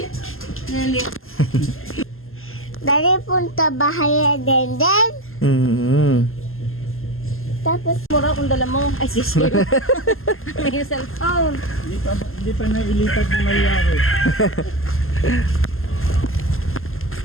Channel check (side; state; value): right; late; 0.61 ms